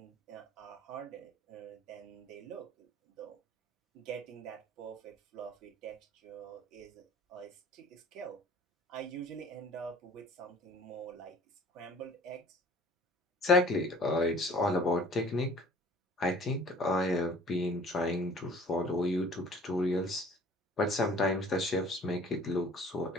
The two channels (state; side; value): normal; both; correlation 0.50